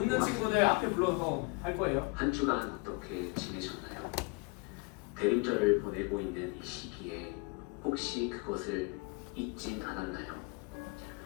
친구들 앞에 불러서 할 거예요. 한 주간 어떻게 지내셨나요? 대림절을 보내고 있는 이 시기에 혹시 그것을 잊진 않았나요?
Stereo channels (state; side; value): quieter; right; 29.5 dB